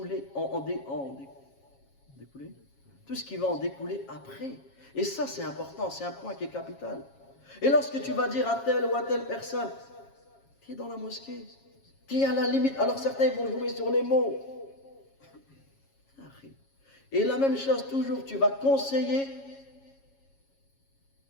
tout ce qui va en découler après. Et ça, c'est important, c'est un point qui est capital. Et lorsque tu vas dire à telle ou à telle personne, tu es dans la mosquée, tu es à la limite, alors certains vont jouer sur les mots. Et la même chose, toujours, tu vas conseiller,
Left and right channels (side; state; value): right; late; 7.3 ms